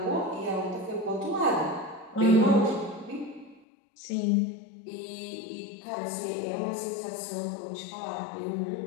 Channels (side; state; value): right; drops out; at 3.7 s